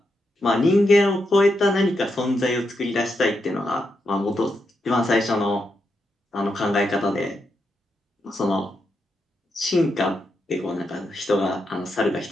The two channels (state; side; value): normal; both; correlation 0.83